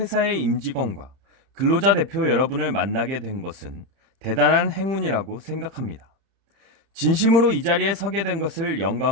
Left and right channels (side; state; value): left; late; 30 ms